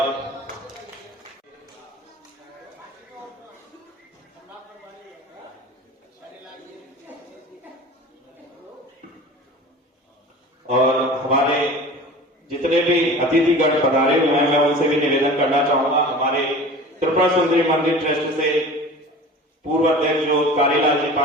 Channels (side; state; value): both; normal; correlation 0.39